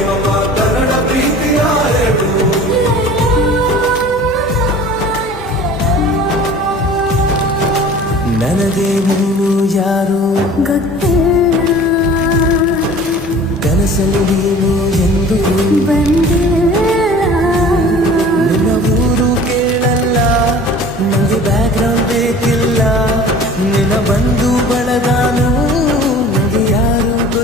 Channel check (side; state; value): both; normal; correlation 0.44